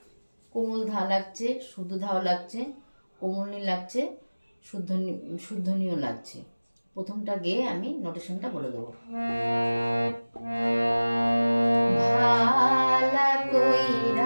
কোমল ধা লাগছে, শুদ্ধ ধাও লাগছে, কোমলনি লাগছে, শুদ্ধনীয় লাগছে। প্রথমটা গেয়ে আমি নোটেশনটা বলে দেবো। ভালা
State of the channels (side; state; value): both; inverted; correlation -1.00